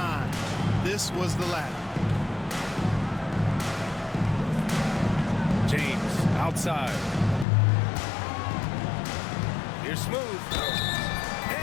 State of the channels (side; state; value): right; drops out; at 7.5 s